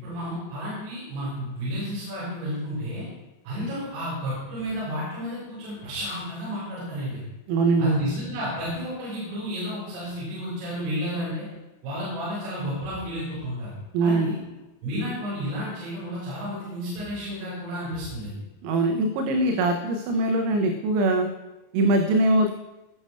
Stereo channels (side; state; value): left; late; 29 ms